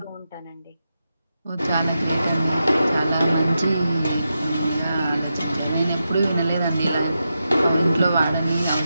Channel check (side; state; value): both; inverted; correlation -0.88